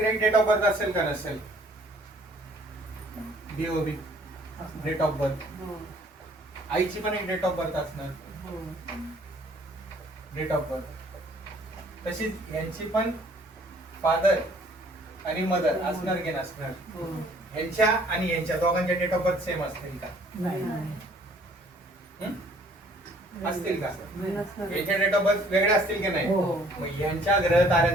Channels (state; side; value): normal; both; correlation 0.58